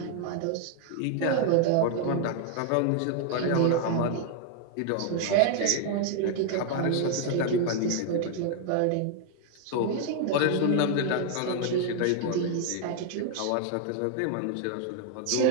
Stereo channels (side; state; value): both; different; correlation 0.00